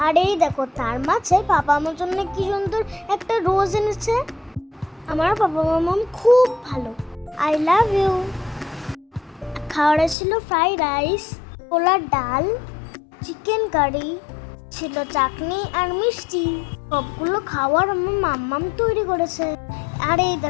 আর এই দেখো, তার মাঝে পাপা আমার জন্য কি সুন্দর একটা রোজ এনেছে। আমার বাবা মাম্মাম খুব ভালো, আই লাভ ইউ। খাওয়ারে ছিল ফ্রাইড রাইস, ছোলার ডাল, চিকেন কারি, ছিল চাটনি আর মিষ্টি। সবগুলো খাওয়ার আমার মাম্মাম তৈরি করেছে। আর এই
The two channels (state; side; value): drops out; right; at 10.2 s